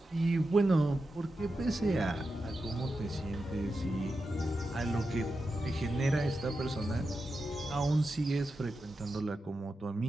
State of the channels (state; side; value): normal; both; correlation 0.90